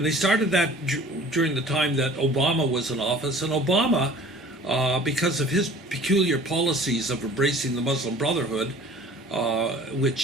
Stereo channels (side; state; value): both; normal; correlation 0.48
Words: they started that during the time that Obama was in office. And Obama, because of his peculiar policies of embracing the Muslim Brotherhood,